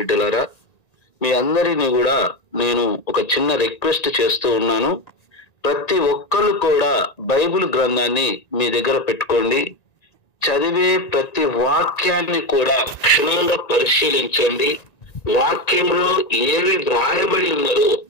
మీ అందరినీ కూడా నేను ఒక చిన్న రిక్వెస్ట్ చేస్తూ ఉన్నాను. ప్రతి ఒక్కరు కూడా బైబిల్ గ్రంథాన్ని మీ దగ్గర పెట్టుకోండి. చదివే ప్రతి వాక్యాన్ని కూడా క్షుణ్ణంగా పరిశీలించండి. వాక్యంలో ఏవి వ్రాయబడి ఉన్నదో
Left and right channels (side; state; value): right; late; 1.9 ms